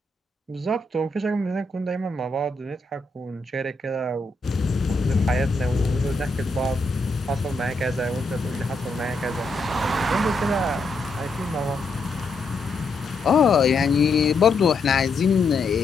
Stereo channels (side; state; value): right; quieter; 3.1 dB